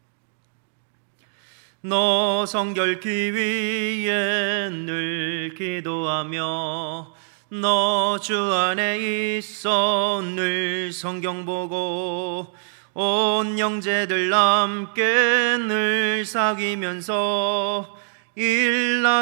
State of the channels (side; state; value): left; silent; digital silence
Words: 너 성결기 위에 늘 기도하며 너 주 안에 있어 늘 성경 보고 온 형제들 함께 늘 사귀면서